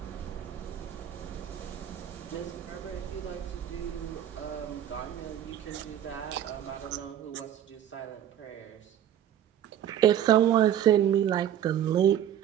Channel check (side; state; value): left; quieter; 10.6 dB